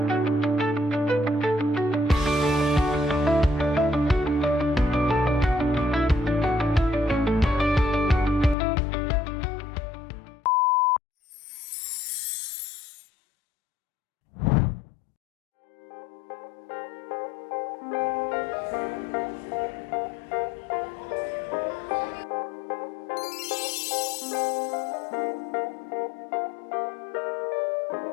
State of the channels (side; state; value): right; drops out; at 8.6 s